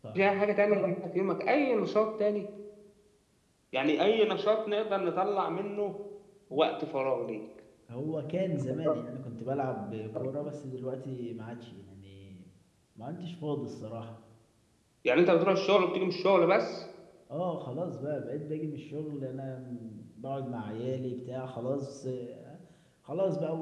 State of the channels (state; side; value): identical; both; correlation 1.00